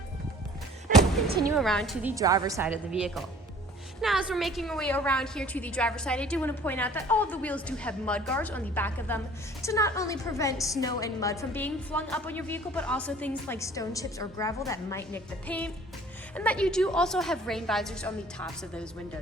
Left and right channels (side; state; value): both; normal; correlation 0.51